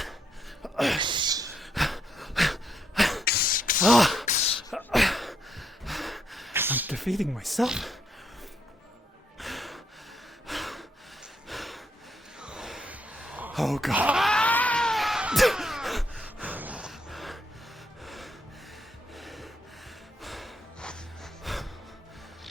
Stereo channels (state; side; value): normal; both; correlation 0.76